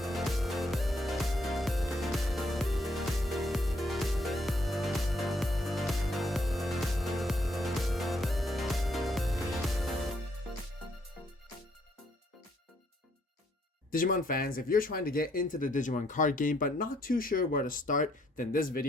Digimon fans, if you're trying to get into the Digimon card game but not too sure where to start, then this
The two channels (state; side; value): normal; both; correlation 0.70